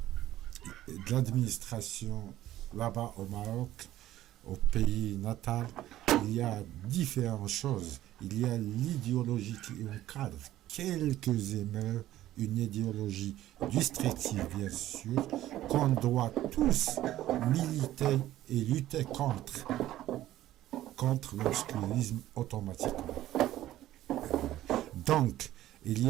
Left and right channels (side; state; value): left; quieter; 14.0 dB